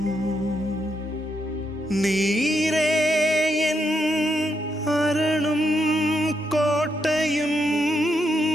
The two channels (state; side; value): normal; both; correlation 0.80